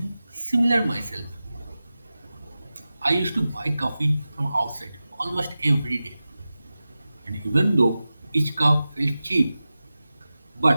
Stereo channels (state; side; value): inverted; both; correlation -0.95